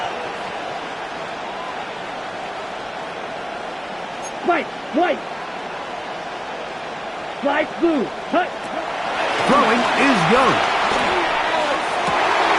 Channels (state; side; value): identical; both; correlation 1.00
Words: White, white. Slide blue. Hut. Throwing is Young.